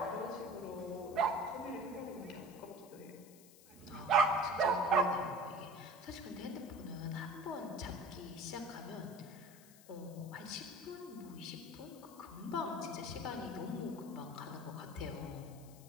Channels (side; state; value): left; noise; hiss, 21 dB below the sound